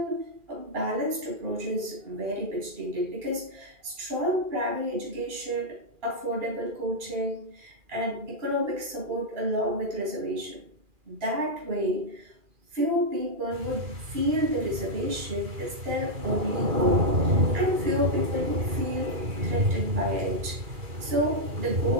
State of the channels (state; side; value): late; left; 2.4 ms